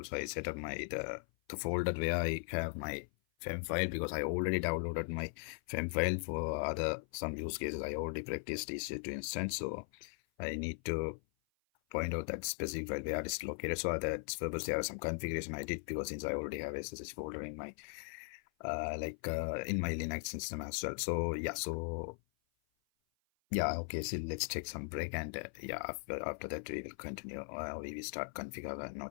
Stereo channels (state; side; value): silent; right; 52 dB below the other